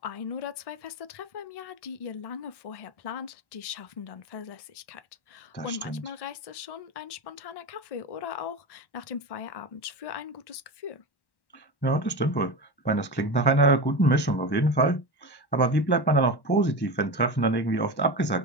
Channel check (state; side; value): late; right; 1.1 ms